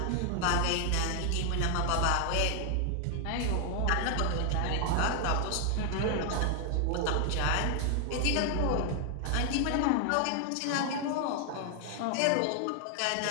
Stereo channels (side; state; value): both; different; correlation 0.00